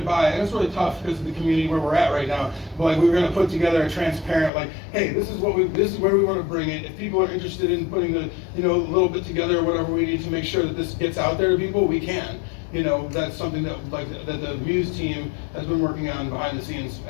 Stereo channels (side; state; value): right; drops out; at 4.5 s